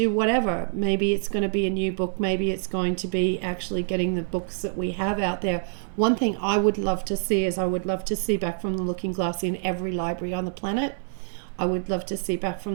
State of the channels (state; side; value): silent; left; digital silence